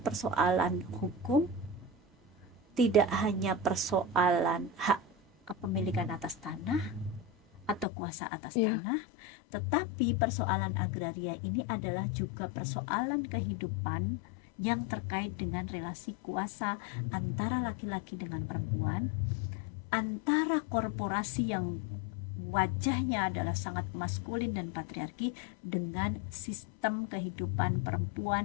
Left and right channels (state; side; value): drops out; right; at 7.9 s